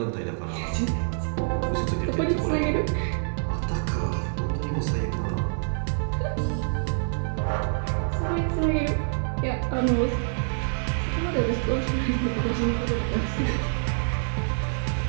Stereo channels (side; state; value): left; silent; digital silence